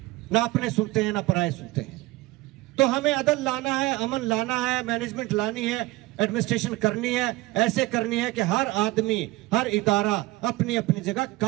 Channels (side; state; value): left; quieter; 19.9 dB